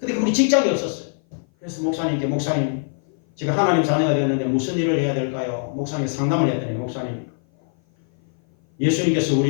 그분이 직장이 없었어요. 그래서 목사님께 목사님 제가 하나님 자녀가 되었는데 무슨 일을 해야 될까요? 목사님이 상담을 했더니 목사님 예수님께서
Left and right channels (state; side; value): silent; right; 57 dB below the other